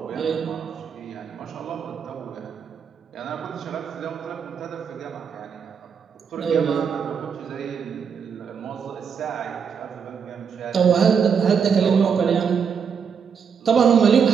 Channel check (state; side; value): quieter; left; 6.7 dB